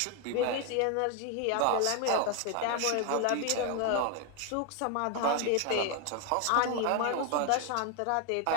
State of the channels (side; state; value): both; different; correlation 0.01